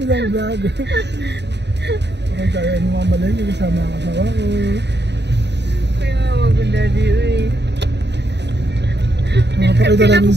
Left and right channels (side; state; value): left; late; 0.50 ms